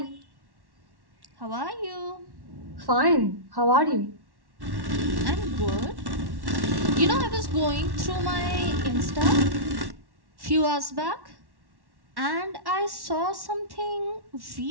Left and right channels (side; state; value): left; late; 1.1 ms